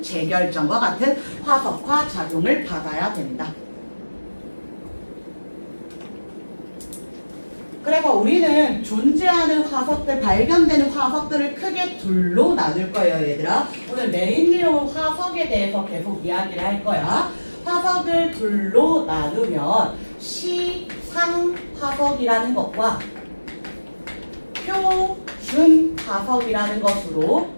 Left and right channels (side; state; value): both; inverted; correlation -1.00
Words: 재결정과 같은 화석화 작용을 받아야 된다. 그래서 우리는 존재하는 화석들, 발견되는 화석들을 크게 둘로 나눌 거예요, 얘들아. 오늘 메인 내용은 화석에 대해서 계속 이야기를 할 거야. 화석을 둘로 나누면 시상화석이라는 것과 표준화석이라는 것으로